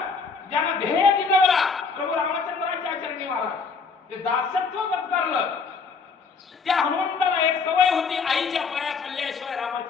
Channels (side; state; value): right; quieter; 5.0 dB